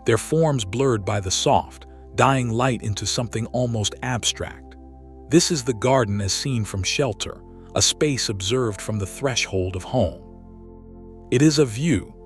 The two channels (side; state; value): both; identical; correlation 1.00